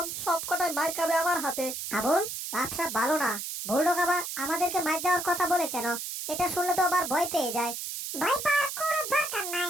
সবকটাই মার খাবে আমার হাতে। আবুল, ব্যবসা ভালো না। বুলডগ আবার আমাদেরকে মার দেওয়ার কথা বলে কেন? এটা শুনলে তো আবার ভয় পেয়ে যায়। ভয় পাওয়ার কোনো দরকার নাই,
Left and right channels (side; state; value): right; noise; hiss, 6 dB below the sound